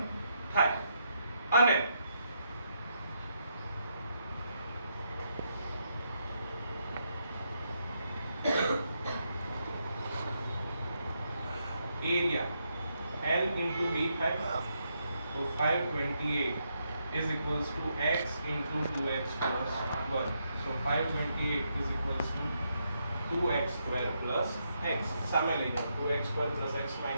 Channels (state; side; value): inverted; both; correlation -0.79